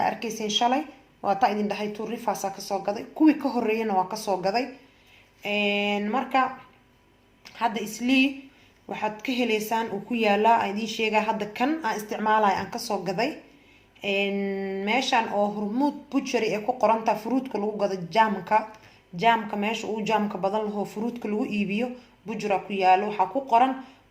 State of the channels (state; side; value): identical; both; correlation 1.00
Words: shalay waa ta idin dhahay tuurifaasa ka soo gaday kuwii ka horeeyana waa ka soo gaday marka hadda isli waxaad ka heleysaan uu ku yaalaa idin sheega hadda kan aan isticmaalay aan ka soo gaday meeshan oo hormuud butchery ee ku qoranta fruitka lagu gado jaamka meesha uu jaamka badan laho fruitka lagu iibiyo bujra ku yaalo waxa ku qoran